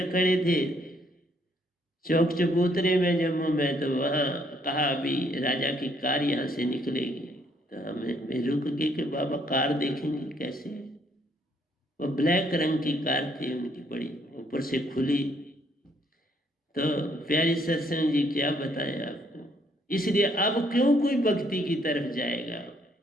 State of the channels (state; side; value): normal; both; correlation 0.68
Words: खड़े थे चौक चबूतरे में जम्मू में, तो वहाँ कहा अभी राजा की कार यहाँ से निकलेगी, तो हमें रुक गए कि बाबा कार देखेंगे कैसे। वो ब्लैक रंग की कार थी उनकी, बड़ी ऊपर से खुली। तो प्यारी सत्संग जी, क्या बताएं आपको। इसलिए अब क्यों कोई भक्ति की तरफ जाएगा।